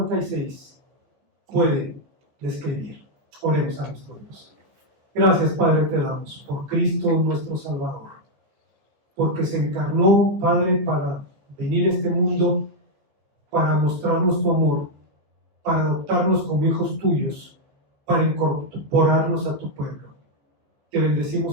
puede describir. Oremos a nuestro Dios. Gracias, Padre, te damos por Cristo nuestro Salvador, porque se encarnó, Padre, para venir a este mundo, para mostrarnos tu amor, para adoptarnos como hijos tuyos, para incorporarnos a tu pueblo. Te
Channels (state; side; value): late; left; 15 ms